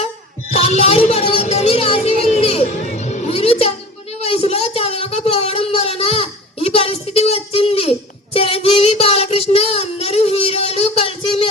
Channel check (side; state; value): both; normal; correlation 0.38